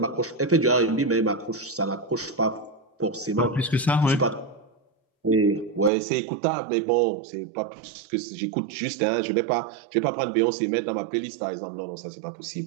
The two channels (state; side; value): drops out; left; at 5.9 s